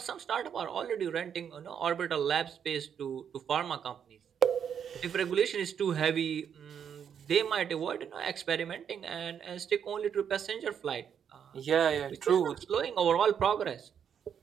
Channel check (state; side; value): quieter; left; 8.1 dB